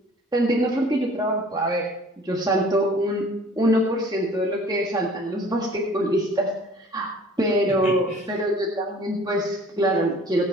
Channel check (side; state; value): both; normal; correlation 0.51